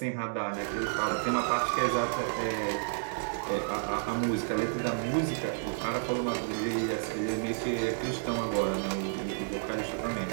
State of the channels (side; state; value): left; silent; digital silence